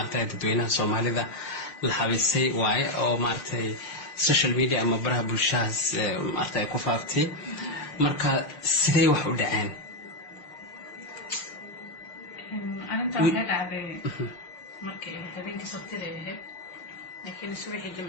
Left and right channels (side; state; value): right; late; 6.6 ms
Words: dadweynaha Soomaalida la xabiisay waay oo maartay social media ama baraha bulshada maartay ku faaftay marka sidee wax u dhaceen arinta waxay dhacday markii habeenkii sabtida ahayd laakiin subaxii